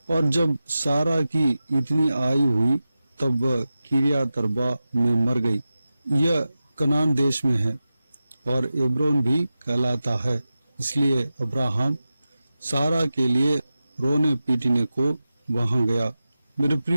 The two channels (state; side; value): inverted; both; correlation -0.93